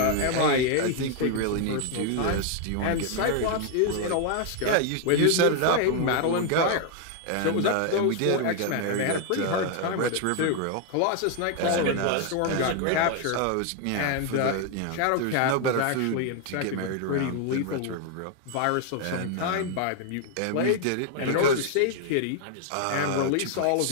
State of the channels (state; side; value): different; both; correlation 0.00